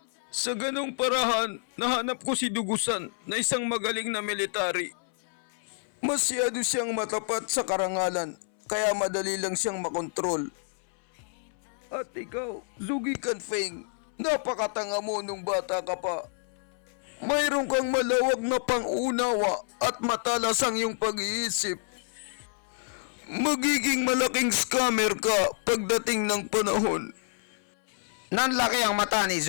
Sa ganong parahan, nahanap ko si Dugusan na isang magaling na military. Masyado siyang matapat sa karangalan, kaya madali lang siyang makontrol. At ikaw, Zhuge Canping, napakatanga mo nung bata ka pa. Mayroon kang malawak na pang-unawa at matalas ang iyong pag-iisip. Magiging malaking scammer ka pagdating ng panahon. Nanlaki ang mata ni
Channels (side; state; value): right; silent; 58 dB below the other